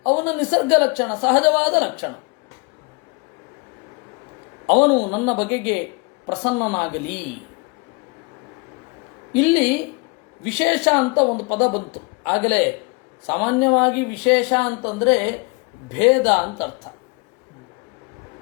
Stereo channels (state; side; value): quieter; right; 28.4 dB